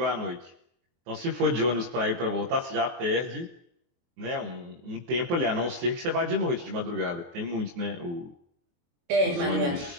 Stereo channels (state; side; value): late; left; 23 ms